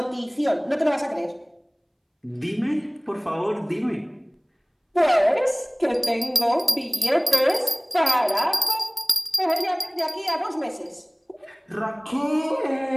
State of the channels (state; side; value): identical; both; correlation 1.00